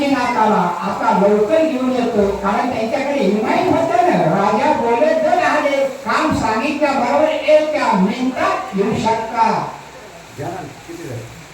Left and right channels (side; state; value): both; identical; correlation 1.00